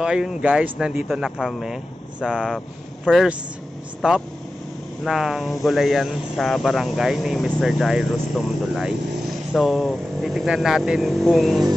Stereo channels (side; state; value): both; normal; correlation 0.94